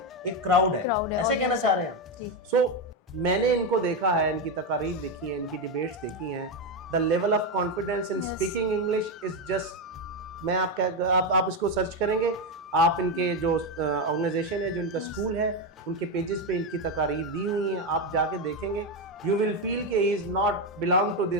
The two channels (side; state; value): both; normal; correlation 0.09